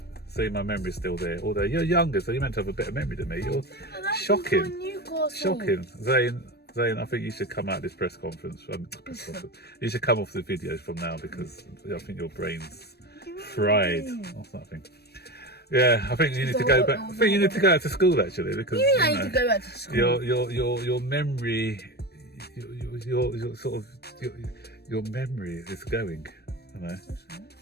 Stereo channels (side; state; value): right; late; 0.47 ms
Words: see, my memory's still there. Although you're younger, so you're meant to have a better memory than me. You're shocking. Zane, I think you should come out of this press conference. You should come off the videos from now, because I think your brain's fried or something. Yeah, I think you need to go back. I think you need to go out to school, actually, because I need to go back to school. Your memory. Your memory is going, you know.